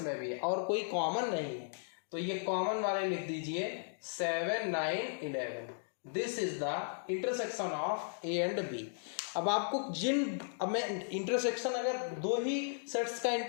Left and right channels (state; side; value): silent; right; digital silence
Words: भी है और कोई कॉमन नहीं है, तो ये कॉमन वाले लिख दीजिए 7 9 11। This is the intersection of A and B. अब आपको अब मैं इंटरसेक्शन अगर दो ही सेट्स का